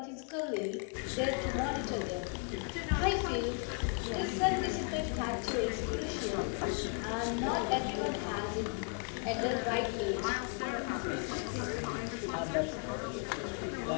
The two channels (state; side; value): quieter; right; 39.6 dB